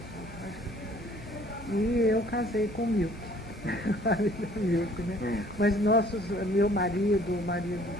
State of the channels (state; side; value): normal; both; correlation 0.56